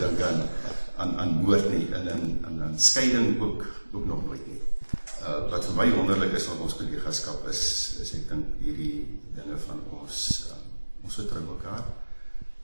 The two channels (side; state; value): both; inverted; correlation -1.00